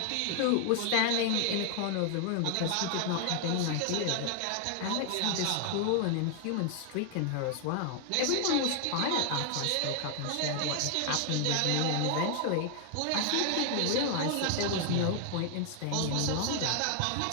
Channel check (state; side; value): different; both; correlation 0.00